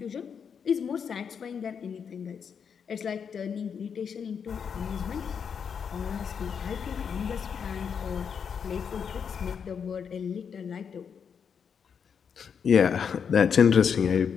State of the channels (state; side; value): quieter; right; 6.9 dB